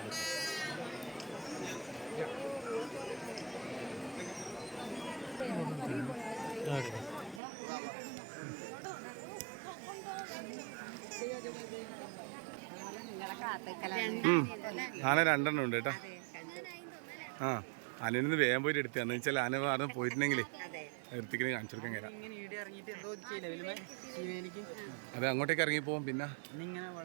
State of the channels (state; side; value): drops out; left; at 7.4 s